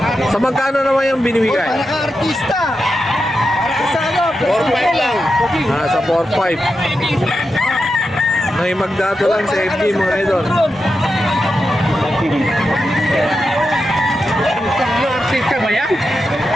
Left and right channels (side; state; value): both; normal; correlation 0.88